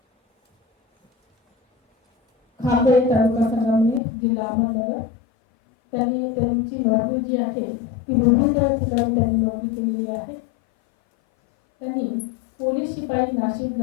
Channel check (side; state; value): right; drops out; at 4.0 s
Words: Khape taluka Sangamner जिल्हा अहमदनगर. त्यांची नोकरी जी आहे ती विविध ठिकाणी त्यांनी नोकरी केलेली आहे. त्यांनी पोलीस शिपाई नाशिक